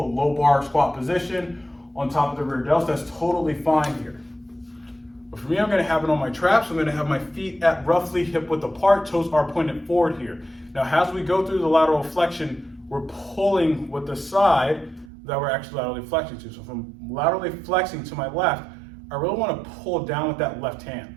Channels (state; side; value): drops out; left; at 15.1 s